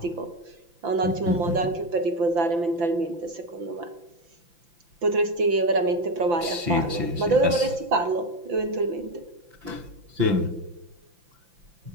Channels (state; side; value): late; left; 5.9 ms